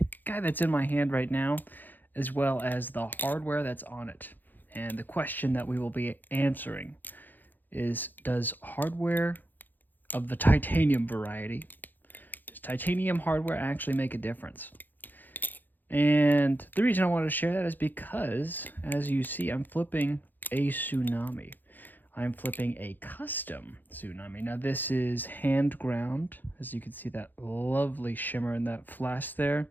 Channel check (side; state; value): right; late; 0.088 ms